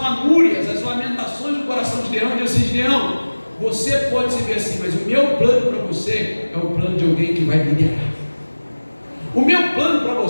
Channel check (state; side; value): inverted; both; correlation -1.00